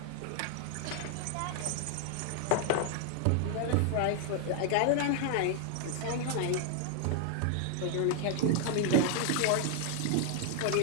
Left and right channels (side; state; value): both; different; correlation 0.00